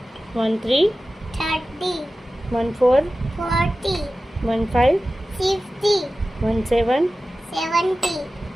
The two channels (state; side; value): normal; both; correlation 0.95